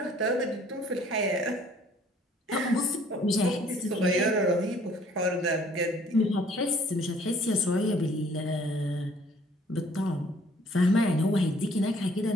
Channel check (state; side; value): normal; both; correlation 0.59